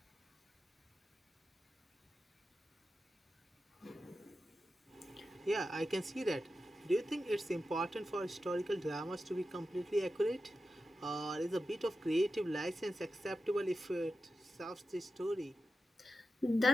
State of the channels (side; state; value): both; normal; correlation 0.91